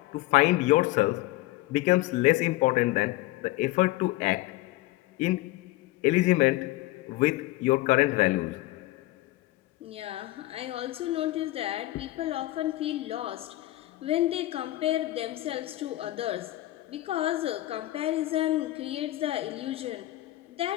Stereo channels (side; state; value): right; quieter; 17.7 dB